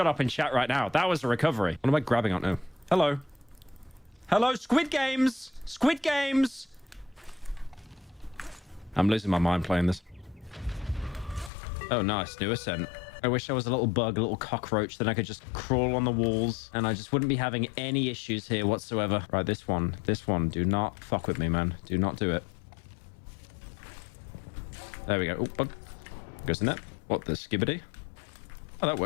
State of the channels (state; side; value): drops out; right; at 11.5 s